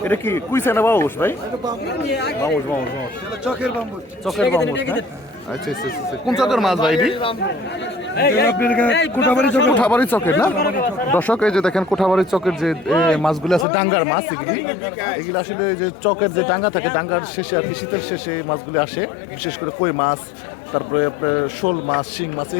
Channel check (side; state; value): right; drops out; at 13.7 s